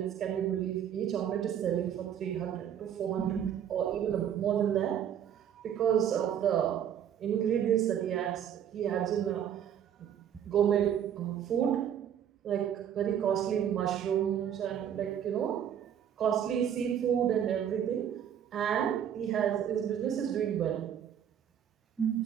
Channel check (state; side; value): quieter; left; 9.4 dB